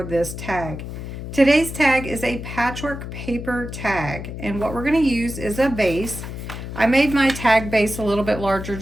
this tag. Today's tag is a patchwork paper tag, and what we're going to use is a base. I made my tag base a little bit larger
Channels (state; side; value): noise; left; hum, 8 dB below the sound